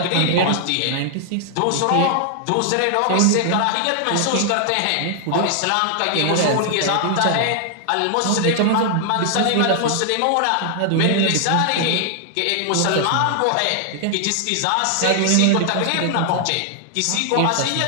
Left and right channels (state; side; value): different; both; correlation 0.00